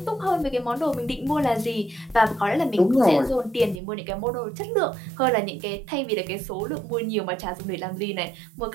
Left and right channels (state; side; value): drops out; left; at 3.8 s